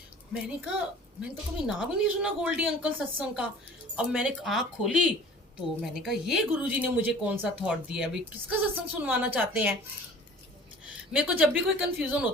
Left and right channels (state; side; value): normal; both; correlation 0.46